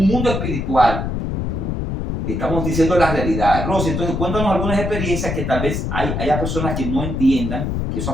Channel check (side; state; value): left; noise; rumble, 2 dB below the sound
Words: mundo espiritual. Y estamos diciendo la realidad. Rosy, entonces cuéntanos algunas experiencias que tal vez haya personas que no entiendan que eso